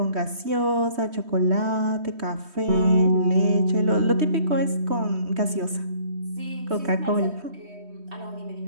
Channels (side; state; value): left; late; 3.2 ms